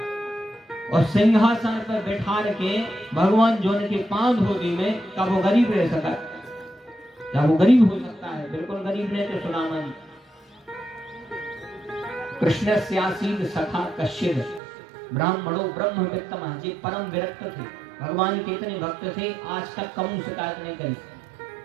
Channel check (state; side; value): drops out; left; at 14.6 s